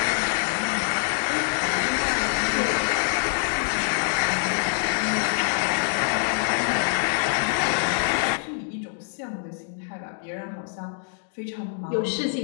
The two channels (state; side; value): silent; right; digital silence